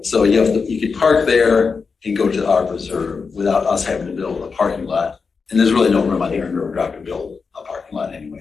So you could park there and go to our preserve without us having to build a parking lot. And there's really no room on here in River Drive to build a parking lot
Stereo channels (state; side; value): quieter; right; 5.1 dB